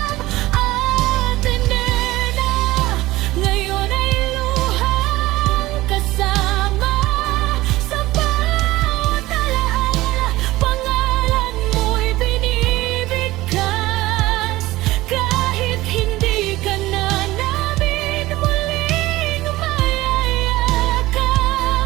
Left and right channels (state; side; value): quieter; left; 18.0 dB